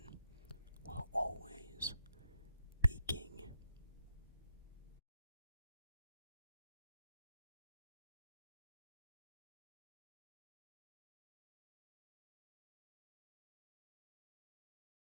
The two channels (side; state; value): both; inverted; correlation -0.83